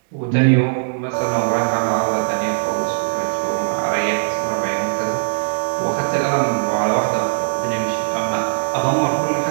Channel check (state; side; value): silent; left; digital silence